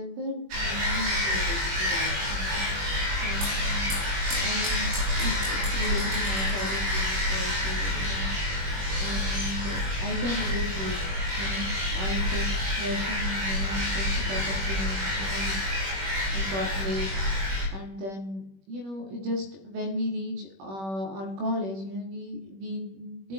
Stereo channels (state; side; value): late; left; 21 ms